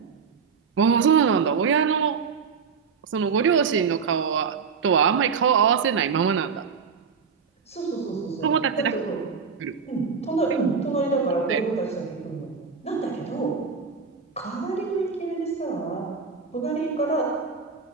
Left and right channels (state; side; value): quieter; left; 5.8 dB